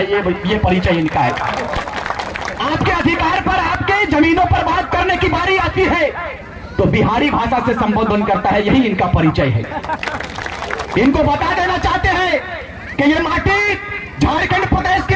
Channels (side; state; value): both; identical; correlation 1.00